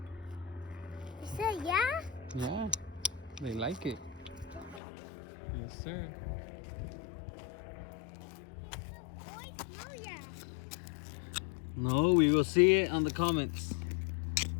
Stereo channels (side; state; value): right; drops out; at 4.8 s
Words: You said yeah? Yeah, they like it. Yes, sir. Oh, yeah. No, we will see it on the comments.